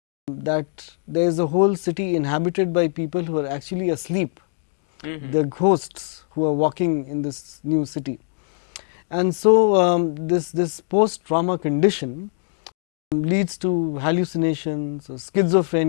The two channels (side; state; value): right; silent; 64 dB below the other